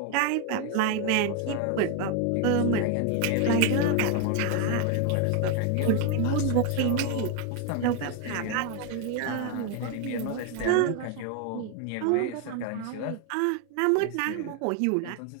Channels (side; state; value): both; different; correlation 0.01